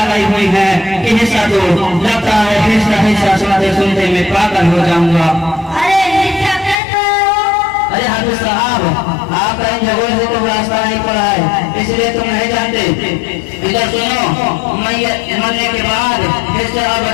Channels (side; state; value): right; drops out; at 6.8 s